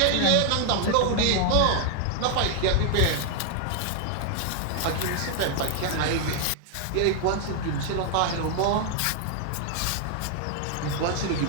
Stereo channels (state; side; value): different; both; correlation 0.00